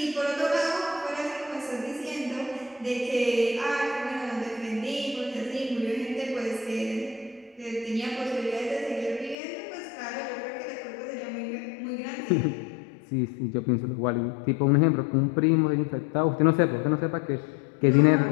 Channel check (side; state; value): right; drops out; at 9.3 s